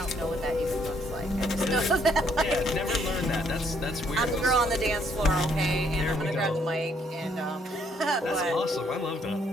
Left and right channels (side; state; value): both; normal; correlation 0.69